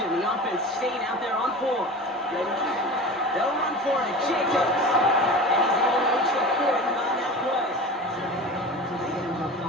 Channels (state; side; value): normal; both; correlation 0.33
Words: The offense staying out there on 4. They'll run for it. Jacobs. And he's able to reach the 40 on that play. So they get him for